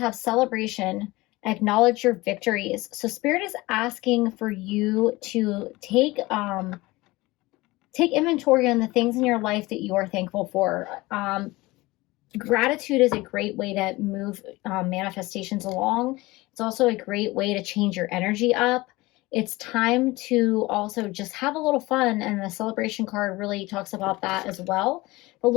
celebration. Acknowledge your victories. So Spirit is asking for you to take inventory on the things in your life that you are thankful for. Gratitude is a great way to move manifestations along. It's also a great way to change your energy up. It's time to also just have a little fun, and the celebration card really talks about that as well. But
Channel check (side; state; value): right; quieter; 20.9 dB